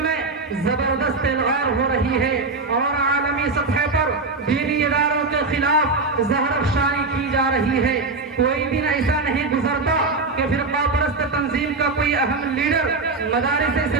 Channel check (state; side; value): quieter; left; 3.7 dB